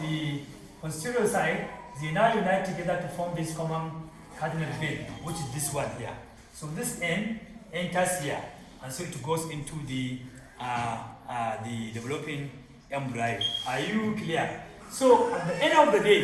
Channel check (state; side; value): identical; both; correlation 1.00